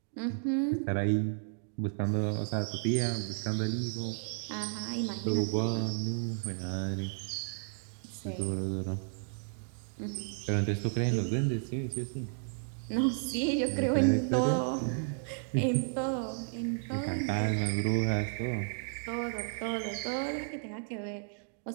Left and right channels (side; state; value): left; silent; digital silence